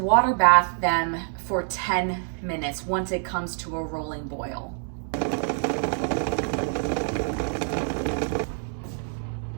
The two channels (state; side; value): silent; left; 58 dB below the other